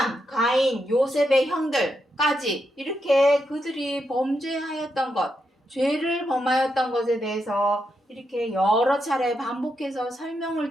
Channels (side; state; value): both; normal; correlation 0.83